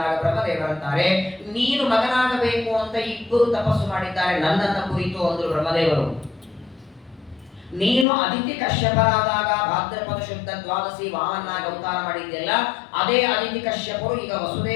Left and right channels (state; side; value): drops out; right; at 8.1 s